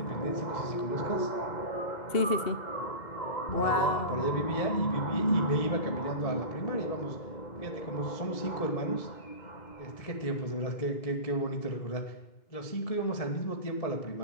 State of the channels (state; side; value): late; right; 2.7 ms